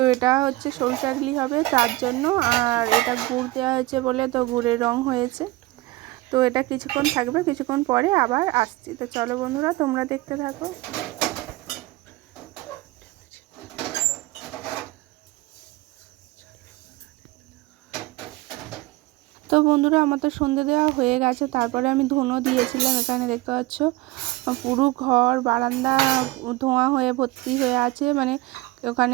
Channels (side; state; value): left; quieter; 19.6 dB